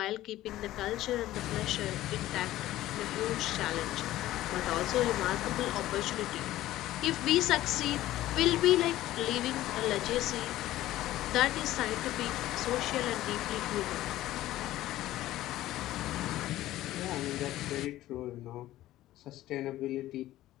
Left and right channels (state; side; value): quieter; right; 15.0 dB